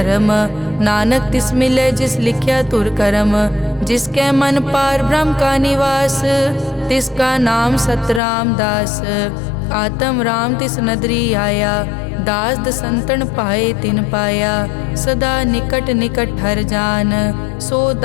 नानक तिस मिलै जिस लिख्या तुर करम। जिसके मन पार ब्रह्म का निवास, तिसका नाम सतराम दास। आत्म राम तिस नदरी आया, दास दसंतन पाए तिन पाया। सदा निकट निकट हर जान, सो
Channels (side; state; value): right; drops out; at 8.2 s